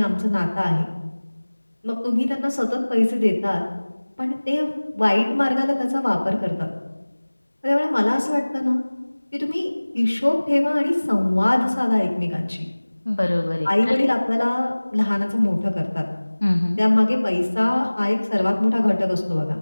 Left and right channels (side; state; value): both; inverted; correlation -1.00